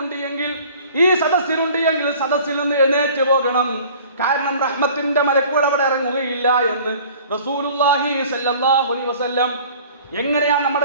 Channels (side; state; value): both; inverted; correlation -0.48